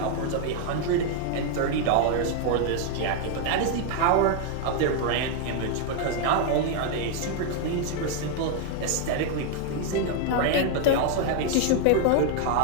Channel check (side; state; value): both; different; correlation 0.00